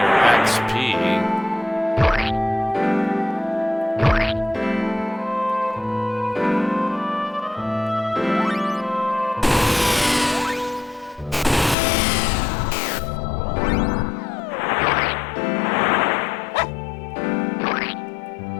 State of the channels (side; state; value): right; drops out; at 11.8 s